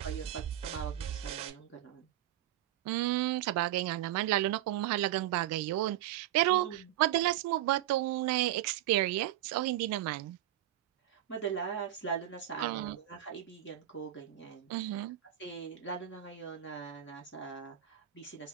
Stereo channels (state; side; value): quieter; left; 12.9 dB